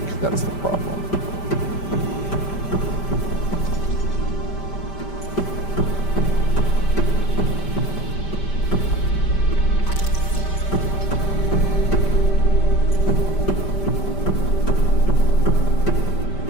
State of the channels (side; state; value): right; late; 5.1 ms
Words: that's the problem.